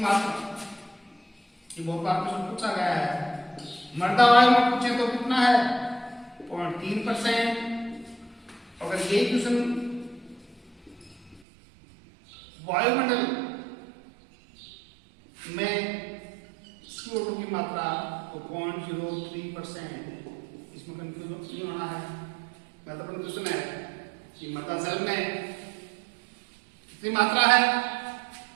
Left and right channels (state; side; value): drops out; left; at 11.4 s